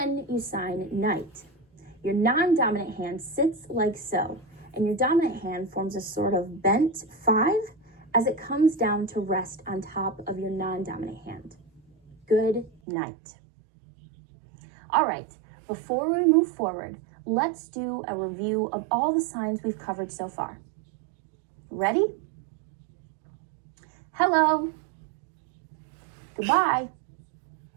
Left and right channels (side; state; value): left; drops out; at 12.8 s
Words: you sign night. Your non-dominant hand sits like so, and your dominant hand forms a sort of bent 5 as it comes down to rest on top of your non-dominant hand. Good night. All right, before we move forward, let's do a review of all the signs we've covered so far. Ready? Hello. Goodbye.